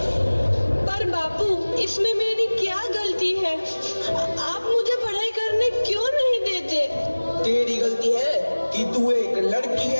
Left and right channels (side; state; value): both; inverted; correlation -1.00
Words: पर बापू, इसमें मेरी क्या गलती है? आप मुझे पढ़ाई करने क्यों नहीं देते? तेरी गलती है कि तू एक लड़की